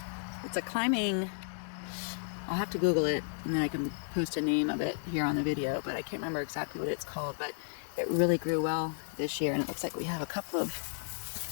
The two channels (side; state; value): right; silent; 56 dB below the other